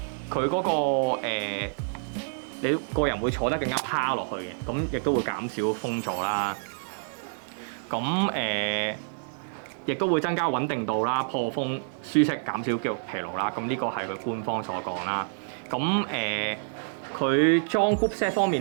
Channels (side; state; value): left; silent; digital silence